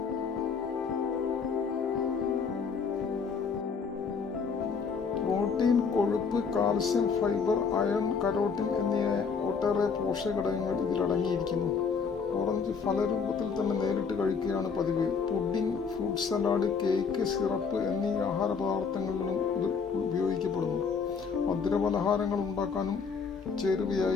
പ്രോട്ടീൻ, കൊഴുപ്പ്, കാൽസ്യം, ഫൈബർ, അയൺ, കരോട്ടിൻ എന്നിവ ഒട്ടേറെ പോഷകഘടകങ്ങൾ ഇതിലടങ്ങിയിരിക്കുന്നു. ഓറഞ്ച് ഫലരൂപത്തിൽ തന്നെ നേരിട്ട് കഴിക്കുകയാണ് പതിവ്. Pudding, fruit salad, cake, syrup എന്നീ ആഹാര പദാർത്ഥങ്ങളിലും ഇത് ഉപയോഗിക്കപ്പെടുന്നു. മധുരപലഹാരങ്ങൾ ഉണ്ടാക്കാനും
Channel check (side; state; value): right; quieter; 5.6 dB